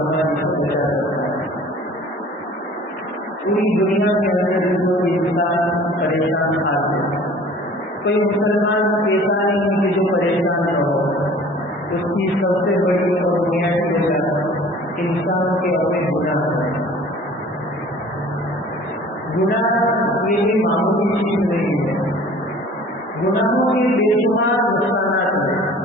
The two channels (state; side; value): normal; both; correlation 0.48